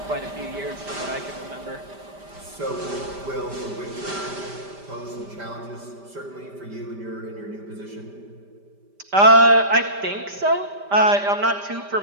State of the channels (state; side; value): late; left; 5.1 ms